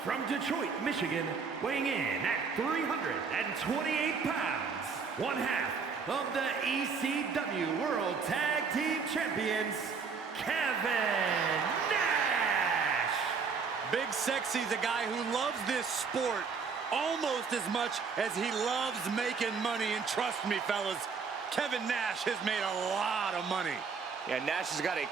From Detroit, Michigan, weighing in at 328 pounds. One half of the ECW World Tag Team Champions, Kevin Nash. Big Sexy's a guy who loves this sport almost as much as he loves making money. And trust me, fellas, Kevin Nash has made a lot of money. Yeah, Nash has got a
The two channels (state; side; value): quieter; left; 5.4 dB